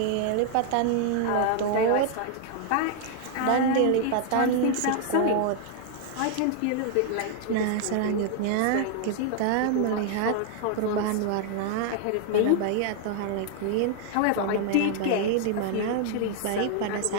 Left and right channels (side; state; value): both; different; correlation 0.00